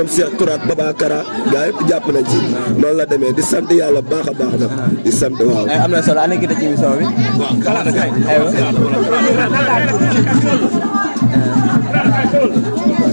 Cheikh Tourat Babakara gaa yëpp jàpp nañ si noonu la demee di sant yàlla baax a baax nag di sant waaw. am na solo ana kita ci émission bi. waaw Kalada kay.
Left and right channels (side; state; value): both; inverted; correlation -1.00